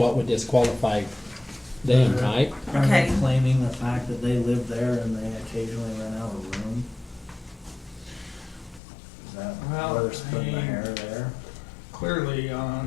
would disqualify them, right? Are Okay. they claiming the fact that they live there and they occasionally rent out a room? Is that Well, where they're splitting the hair there? Clearly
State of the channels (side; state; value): right; drops out; at 8.8 s